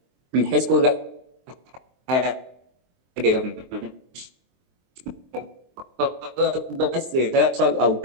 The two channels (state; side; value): late; left; 23 ms